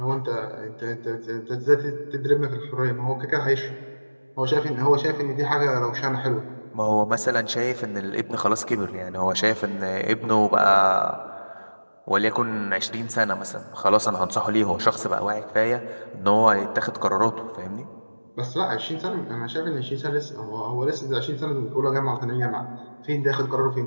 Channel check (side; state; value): both; inverted; correlation -1.00